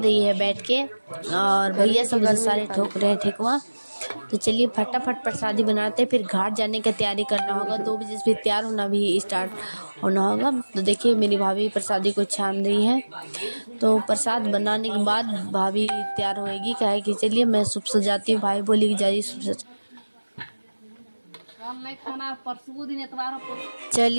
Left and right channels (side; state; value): both; inverted; correlation -1.00